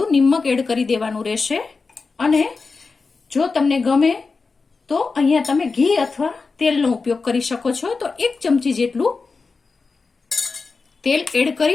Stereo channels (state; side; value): quieter; right; 4.4 dB